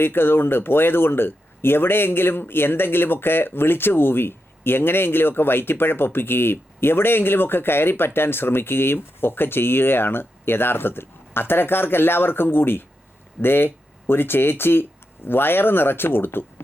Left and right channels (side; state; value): both; normal; correlation 0.86